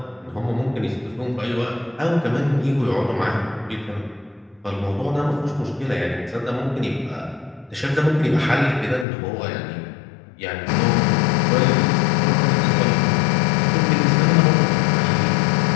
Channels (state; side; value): drops out; right; at 9.1 s